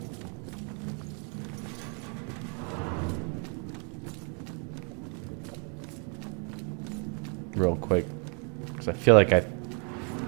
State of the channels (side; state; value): left; quieter; 39.3 dB